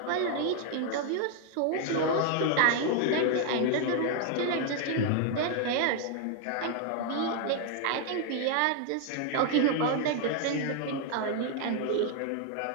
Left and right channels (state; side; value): different; both; correlation 0.00